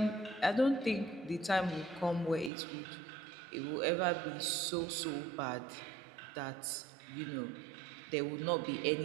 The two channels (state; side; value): drops out; left; at 2.5 s